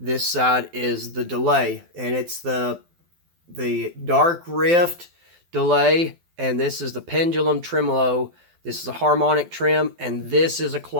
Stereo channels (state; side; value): late; left; 12 ms